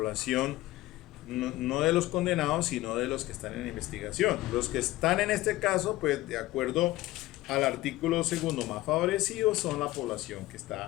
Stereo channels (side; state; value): right; quieter; 17.4 dB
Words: no de los condenados, sino de los que están en investigación. Los que están en este caso, pues de acuerdo al artículo segundo más favorecido, son la población que